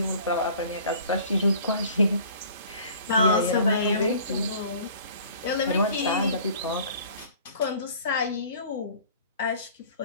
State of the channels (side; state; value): both; inverted; correlation -0.49